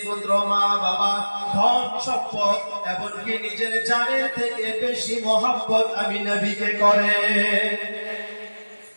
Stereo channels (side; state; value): both; inverted; correlation -1.00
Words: পুত্র মা বাবা, ধন সম্পদ, এমনকি নিজের জানের থেকে বেশি মহব্বত আমি নবীকে করে।